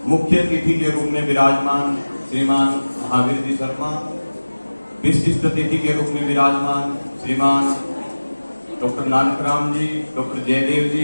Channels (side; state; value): both; inverted; correlation -1.00